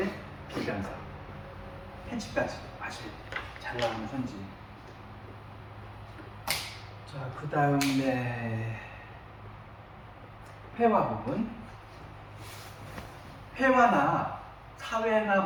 비변사. 편집까지 아시죠? 잘 나오는 선지. 자, 그 다음에 회화 부분. 회화나 사회나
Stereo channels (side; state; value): both; identical; correlation 1.00